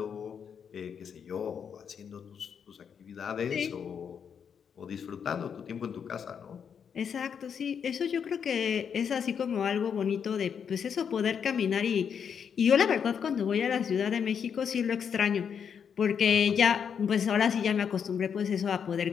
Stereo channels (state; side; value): quieter; right; 7.3 dB